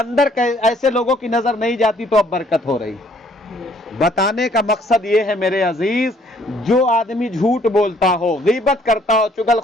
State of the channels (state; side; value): normal; both; correlation 0.62